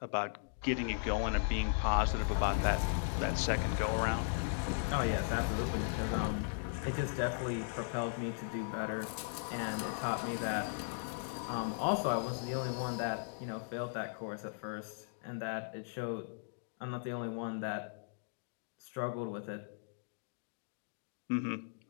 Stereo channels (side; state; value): right; silent; digital silence